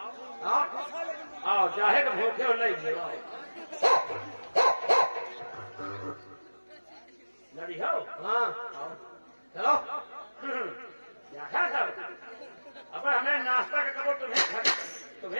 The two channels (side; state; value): both; inverted; correlation -1.00